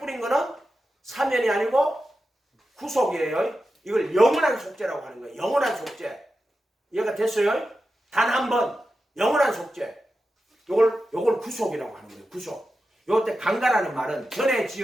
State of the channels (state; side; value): normal; both; correlation 0.91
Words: 거는 사면이 아니고 구속이에요. 이걸 영원한 속죄라고 하는 거예요. 영원한 속죄. 이해가 됐어요? 단 한 번 영원한 속죄. 요걸 구속이라고 하는 거예요. 구속. 요때 강가라는 말은 전에